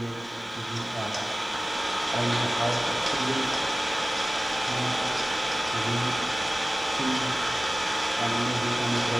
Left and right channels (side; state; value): both; normal; correlation 0.97